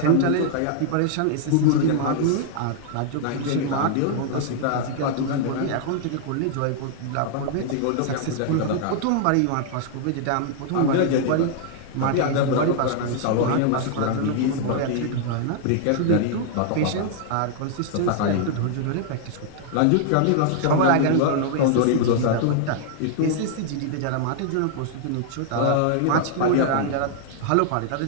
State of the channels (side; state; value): both; different; correlation -0.01